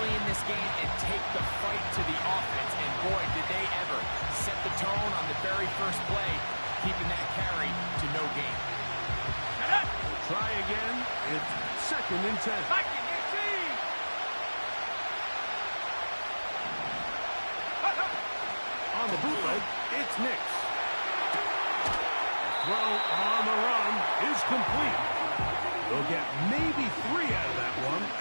in this game and take the fight to the offense. And boy, did they ever set the tone on the very first play, keeping that carry to no gain. We'll try again. It's 2nd and 10. On the bootleg, it's Nix. The throw on the run is complete. They'll get maybe 3 out of that one,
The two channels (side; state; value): both; inverted; correlation -1.00